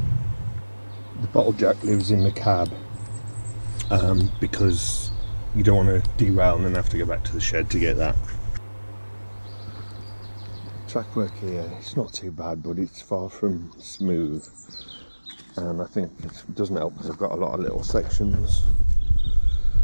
The bottle jack lives in the cab because you don't want to derail and then have to go back to the shed to get that. track work here, it's not too bad, but it's far from smooth, and I think it doesn't help because I've got a lot of little sections.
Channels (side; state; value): both; inverted; correlation -1.00